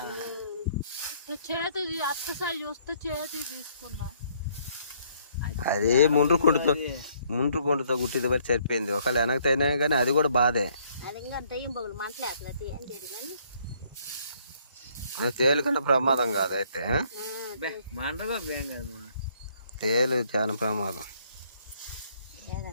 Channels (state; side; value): inverted; both; correlation -0.65